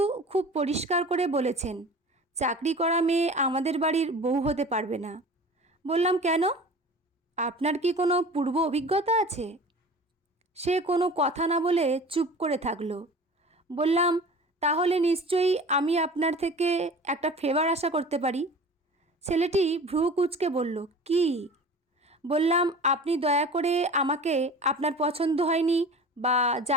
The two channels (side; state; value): both; normal; correlation 0.39